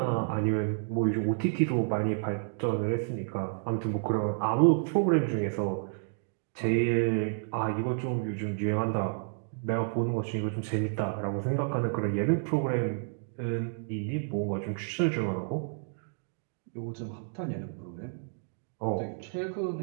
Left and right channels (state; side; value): silent; left; digital silence